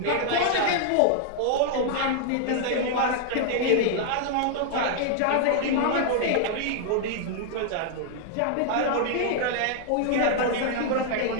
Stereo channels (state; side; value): different; both; correlation -0.01